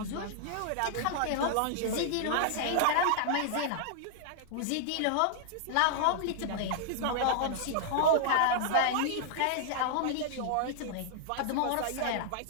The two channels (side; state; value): both; different; correlation -0.01